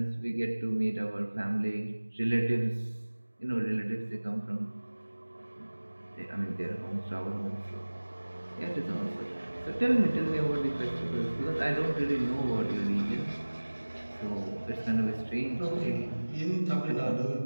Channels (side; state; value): both; inverted; correlation -1.00